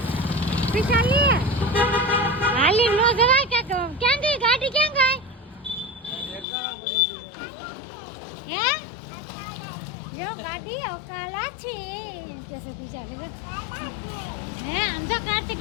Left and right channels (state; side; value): drops out; right; at 6.5 s